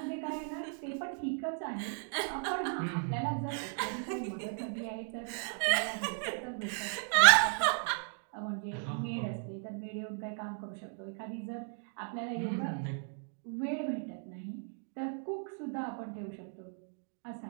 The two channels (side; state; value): left; silent; 54 dB below the other